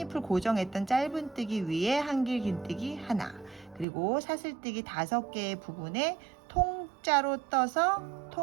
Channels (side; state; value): left; drops out; at 3.9 s